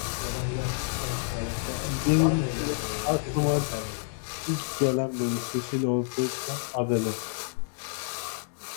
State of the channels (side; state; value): right; silent; digital silence